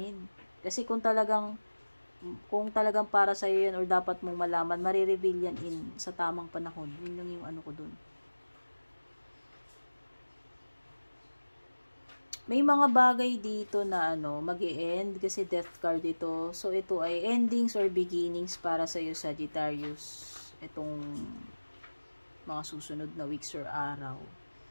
Kasi kung talagang para sa'yo yan or dapat mong malaman, marireveal yan sa tamang panahon. Yun lang yung ano ko dun. May mga bagay dito na mag-e-end kasi death card ito. So, ito ay endings or beginnings para sa'yo, Sagittarius. Itong mga susunod na weeks or araw.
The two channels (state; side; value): inverted; both; correlation -1.00